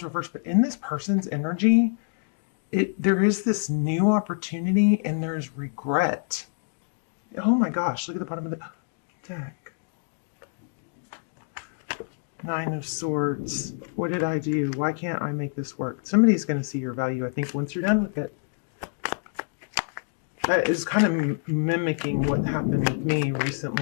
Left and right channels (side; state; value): right; silent; digital silence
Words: reversed, but in this person's energy, there is this new opportunity and there is regret. Oh my gosh, look at the bottom of the deck. Nine of Swords. What did I do? Why can't I make this work? Somebody's going to see your value, I think, once you're done with it. That is kind of mimicking what happened with me